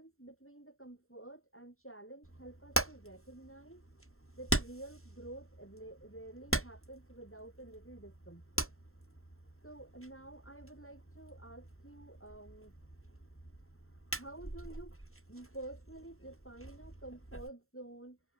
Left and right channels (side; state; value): right; late; 0.62 ms